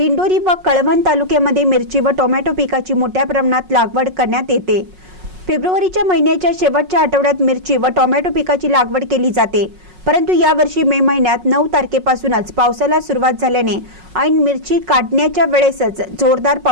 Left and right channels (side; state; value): left; late; 5.4 ms